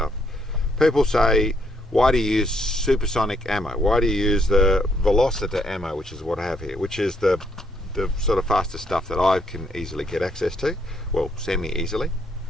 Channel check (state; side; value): normal; both; correlation 0.72